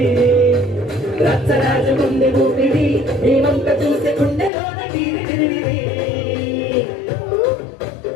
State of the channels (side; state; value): right; drops out; at 4.5 s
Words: రచ్చరాజు గుండె ఊపిడి ఈ వంక చూసే గుండెలోన తీరి